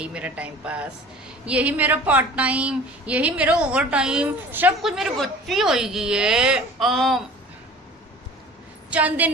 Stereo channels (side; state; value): both; normal; correlation 0.44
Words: मेरा टाइम पास, यही मेरा पार्ट टाइम, यही मेरा ओवर टाइम, सब कुछ मेरे बच्ची होगी है।